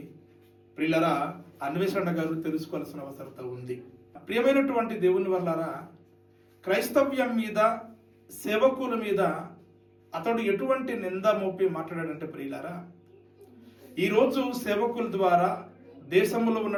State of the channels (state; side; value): identical; both; correlation 1.00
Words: ప్రియులరా అన్వేషణ గారు తెలుసుకోవాల్సిన అవసరత ఉంది. ప్రియమైనటువంటి దేవుని వల్లరా, క్రైస్తవ్యం మీద, సేవకుల మీద అతడు ఎటువంటి నింద మోపి మాట్లాడాడంటే ప్రియులరా, ఈరోజు సేవకుల ద్వారా, దేశంలో